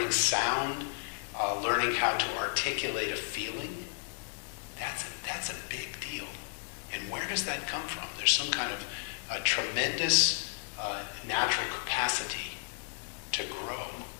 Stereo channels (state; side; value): silent; right; 56 dB below the other